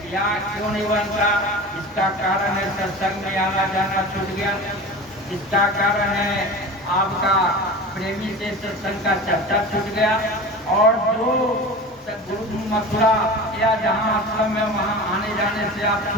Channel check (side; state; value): both; normal; correlation 0.33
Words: या क्यों नहीं बनता? इसका कारण है सत्संग में आना जाना छूट गया, इसका कारण है आपका प्रेमी से सत्संग का चर्चा छूट गया, और जो गुरु मथुरा या जहाँ आश्रम में वहाँ आने जाने से आप